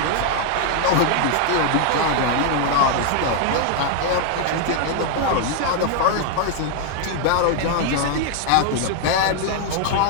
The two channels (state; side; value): different; both; correlation 0.00